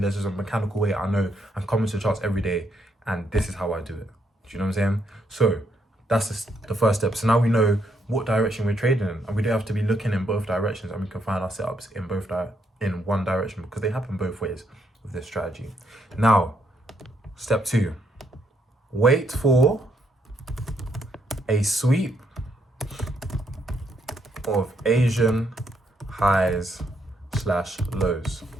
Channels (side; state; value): both; normal; correlation 0.75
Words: just a mechanical way. I know I'm coming to the charts every day and this is how I do it. Do you know what I'm saying? So that's the first step. So now we know what direction we're trading in, and we don't have to be looking in both directions, and we can find our setups in one direction, because they happen both ways with this strategy. Now, step 2, wait for a sweep of Asian highs / lows,